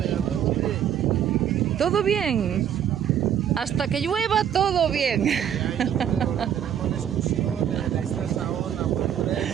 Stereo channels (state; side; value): quieter; left; 9.4 dB